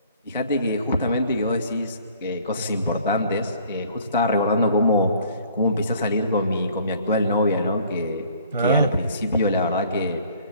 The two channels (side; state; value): both; inverted; correlation -0.55